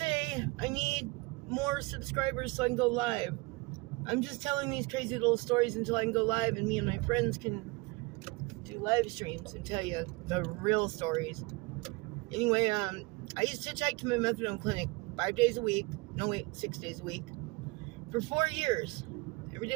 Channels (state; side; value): quieter; left; 25.6 dB